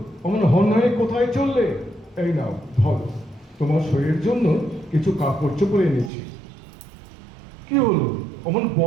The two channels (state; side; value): drops out; left; at 6.1 s